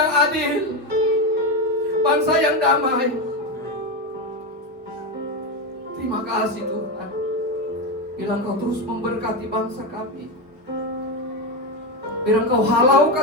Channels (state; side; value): normal; both; correlation 0.12